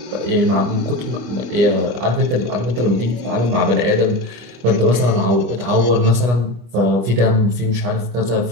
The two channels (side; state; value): left; late; 25 ms